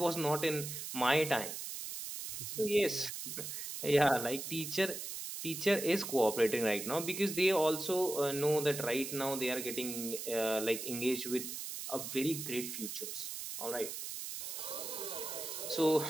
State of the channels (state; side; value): noise; right; hiss, 6 dB below the sound